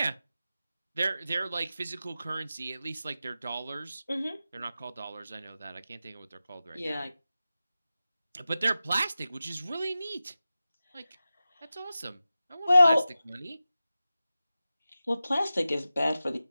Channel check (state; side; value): inverted; both; correlation -0.94